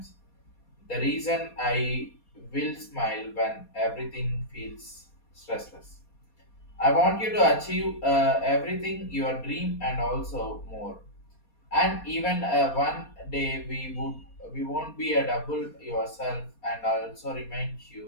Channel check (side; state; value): right; late; 4.2 ms